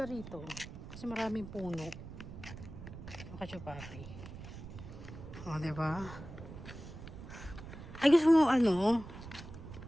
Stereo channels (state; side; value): noise; right; rumble, 12 dB below the sound